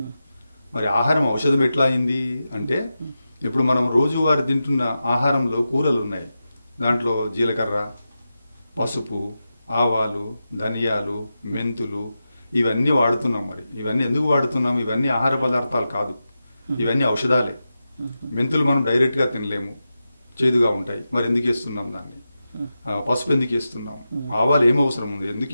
మరి ఆహారం ఔషధం ఎట్లా అయింది అంటే, ఇప్పుడు మనం రోజువారీ తింటున్న ఆహారంలో కూరలు ఉన్నాయి. దాంట్లో జీలకర్ర, పసుపు, ఆవాలు, ధనియాలు, మెంతులు ఇవన్నీ వాడుతున్నాం. మరి ఇవన్నీ ఎందుకు వాడుతున్నాం? ఇవన్నీ ఆహార పదార్థాలు కాదు, ఇవన్నీ ఔషధాలే. మెంతులు మనం డైరెక్ట్గా తినలేము, చేదుగా ఉంటాయి. మరి ఎందుకు వేస్తున్నాం దాన్ని? పసుపు ఎందుకు వేస్తున్నాం? ఆవాలు ఏం అవసరం ఉంది? ఎందుకు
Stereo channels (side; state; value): both; inverted; correlation -0.91